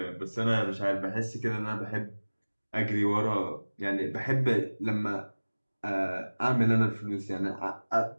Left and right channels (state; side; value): inverted; both; correlation -1.00